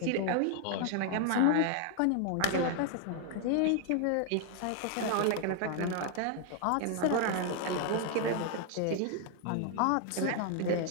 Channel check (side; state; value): both; different; correlation 0.00